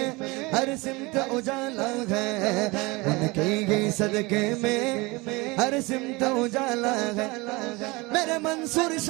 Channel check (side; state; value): left; quieter; 24.4 dB